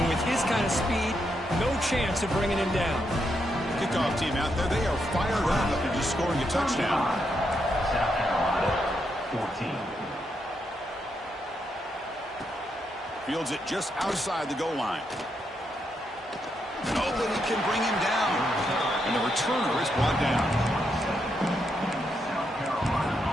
with his kind of speed, no chance of bringing him down. Kickoff team out there, they are fired up after just scoring a touchdown. South Carolina, 14. Fields it just outside the goal line. Nobody can bring him down. And the returner is brought down. South Carolina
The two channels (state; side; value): normal; both; correlation 0.81